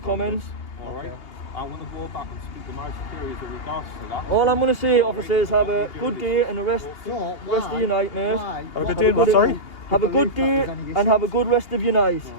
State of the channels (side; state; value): right; late; 2.8 ms